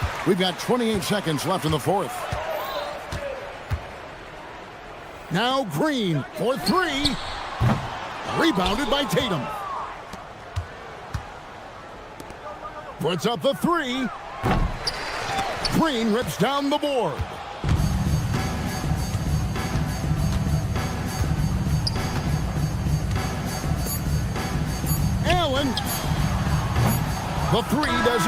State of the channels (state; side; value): identical; both; correlation 1.00